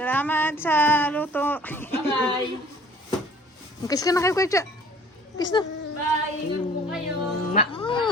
sa luto! Bye-bye! Kiss ka na kayo, Kuya Cha! Kiss na! Bye! Ingat po kayo!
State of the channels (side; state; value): both; normal; correlation 0.51